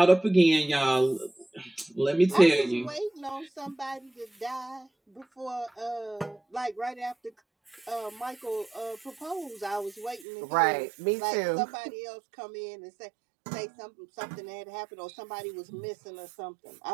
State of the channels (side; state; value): left; drops out; at 10.2 s